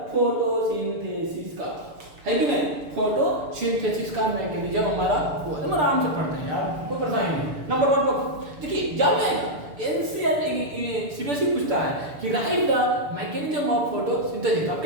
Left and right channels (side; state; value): left; late; 6.8 ms